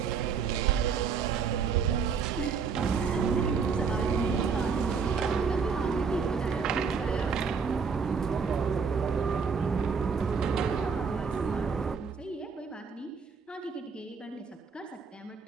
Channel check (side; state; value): left; quieter; 5.7 dB